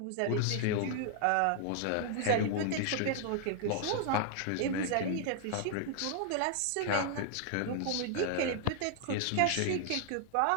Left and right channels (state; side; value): different; both; correlation 0.00